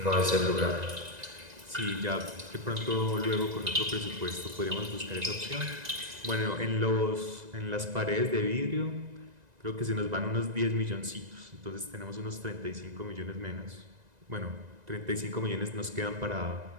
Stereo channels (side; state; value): left; late; 1.9 ms